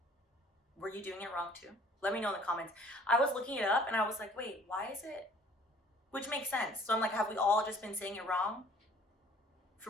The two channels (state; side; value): normal; both; correlation 0.54